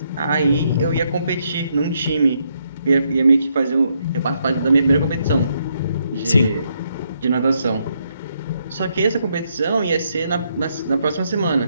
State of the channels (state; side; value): inverted; both; correlation -0.76